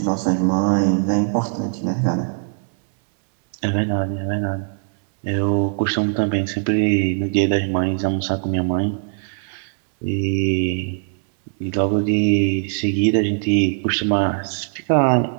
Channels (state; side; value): silent; left; 65 dB below the other